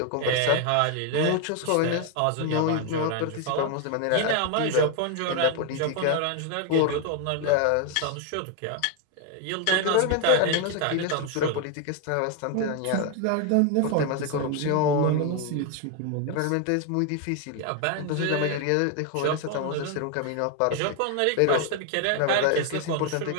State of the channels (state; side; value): different; both; correlation 0.01